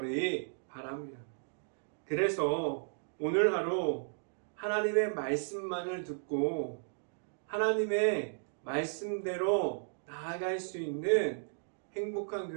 바랍니다. 그래서 오늘 하루 하나님의 말씀만을 듣고 하나님의 말씀대로 나아갈 수 있는 행복한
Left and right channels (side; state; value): left; silent; digital silence